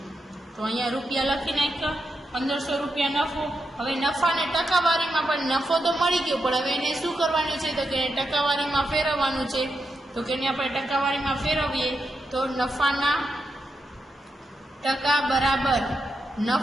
તો અહીંયા રૂપિયા લખી નાખ્યો, 1,500 રૂપિયા નફો. હવે નફાને ટકાવારીમાં પણ નફો તો મળી ગયો, પણ હવે એને શું કરવાનું છે? તો કે ટકાવારીમાં ફેરવવાનું છે. તો કે એને આપણે ટકાવારીમાં ફેરવીએ તો નફાના ટકા બરાબર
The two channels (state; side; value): normal; both; correlation 0.85